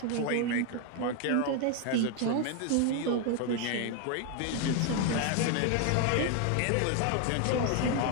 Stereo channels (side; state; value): both; different; correlation 0.01